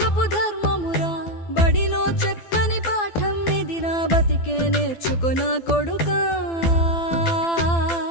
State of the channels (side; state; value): right; late; 12 ms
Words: ధర్మమురా. బడిలో చెప్పని పాఠం ఇది, నా బతికే నేర్చుకో నా కొడుకా.